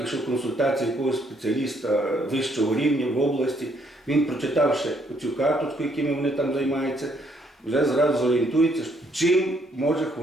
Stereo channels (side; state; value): both; normal; correlation 0.70